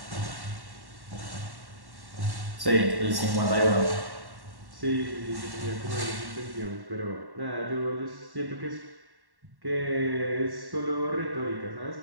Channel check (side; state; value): left; late; 1.1 ms